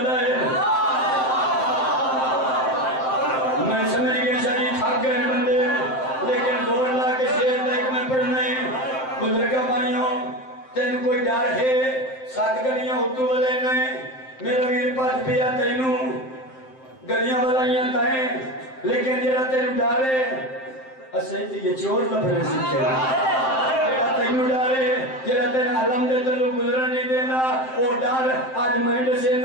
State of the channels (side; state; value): right; late; 7.7 ms